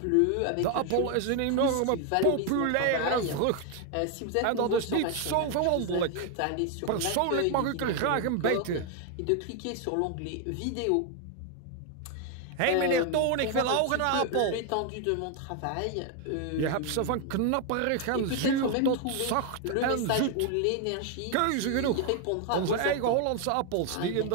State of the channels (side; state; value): both; different; correlation 0.01